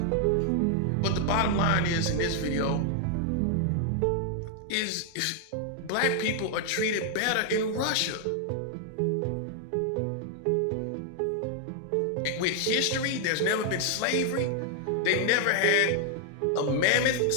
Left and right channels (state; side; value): different; both; correlation 0.00